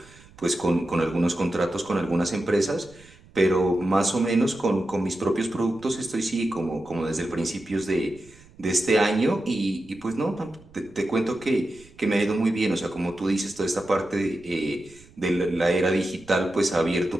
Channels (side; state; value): right; noise; rumble, 25 dB below the sound